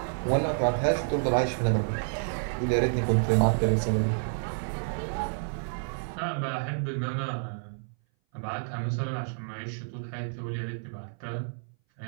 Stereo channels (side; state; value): left; silent; 58 dB below the other